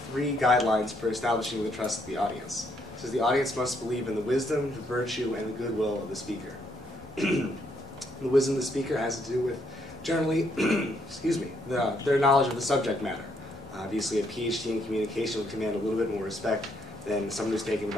three guidelines for establishing the trust of the audience. It says the audience must believe in the wisdom, the virtue, and the goodwill of the speaker. The wisdom of the speaker has to do with, generally, excuse me, their knowledge of the subject matter. Obviously, a PhD in communication would command a little bit more respect than someone who's taken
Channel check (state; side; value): normal; both; correlation 0.72